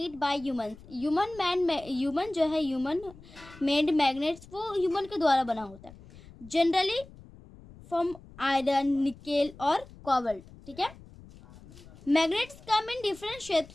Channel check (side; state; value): left; noise; rumble, 20 dB below the sound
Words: by humans. Human जो है, ह्यूमन मेड मैग्नेट्स वो ह्यूमन के द्वारा बना होता है। जनरली फ्रॉम आयरन, निकेल और कोबाल्ट। ठीक है, magnets come in different